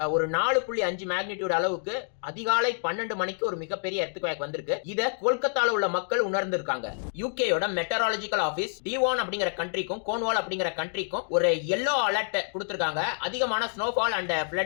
ஒரு 4.5 மேக்னிடியூட் அளவுக்கு அதிகாலை 12 மணிக்கு ஒரு மிகப்பெரிய எர்த்குவேக் வந்திருக்கு. இத கொல்கத்தால உள்ள மக்கள் உணர்ந்திருக்காங்க. யூகேயோட மெட்டராலஜிக்கல் ஆபீஸ் டிவான் அப்படிங்கிற கண்ட்ரிக்கும் கோன்வால் அப்படிங்கிற கண்ட்ரிக்கும் ஒரு yellow அலர்ட் கொடுத்திருக்காங்க. அதிகமான ஸ்னோஃபால் அண்ட்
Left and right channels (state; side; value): silent; right; digital silence